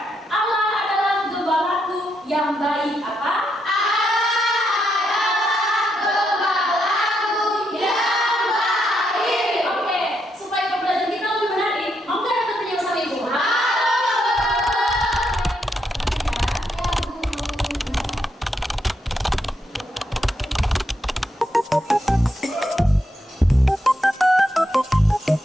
Allah adalah gembalaku yang baik. Apa?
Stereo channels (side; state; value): both; normal; correlation 0.80